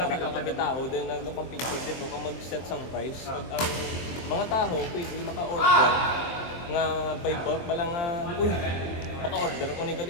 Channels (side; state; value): right; late; 23 ms